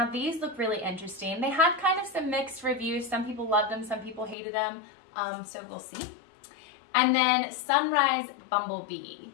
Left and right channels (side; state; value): right; drops out; at 4.4 s